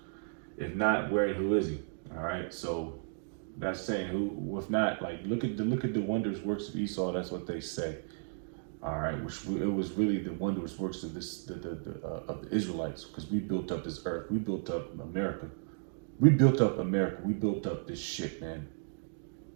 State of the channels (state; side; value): silent; left; digital silence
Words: If not, where and who is he? All right, so that's saying who. If not, like look at the wondrous works of Esau. That's what they say. All right, which it was really the wondrous works of of the Israelites, because we built up this earth, we built up America, we built up this shit, man.